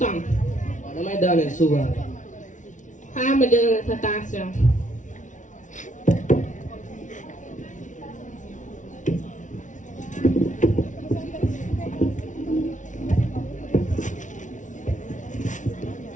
temps. waaw damay daaneel souvent. xaaral ma jël sa tension.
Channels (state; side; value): late; right; 0.37 ms